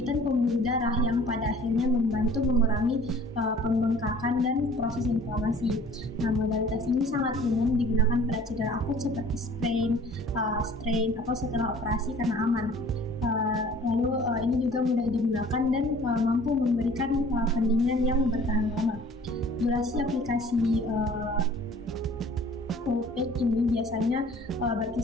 pembuluh darah yang pada akhirnya membantu mengurangi pembengkakan dan proses inflamasi. Nah, modalitas ini sangat umum digunakan pada cedera akut seperti strain atau setelah operasi karena aman. Lalu ini juga mudah digunakan dan mampu memberikan pendinginan yang bertahan lama. Durasi aplikasi cold pack ini biasanya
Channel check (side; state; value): both; normal; correlation 0.50